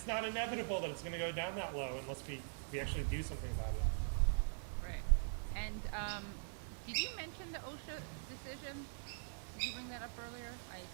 not inevitable that it's going to go down that low unless we actually do something about it. Right. And did you mention the OSHA decision? Did you bring that up earlier? I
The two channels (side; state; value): left; silent; digital silence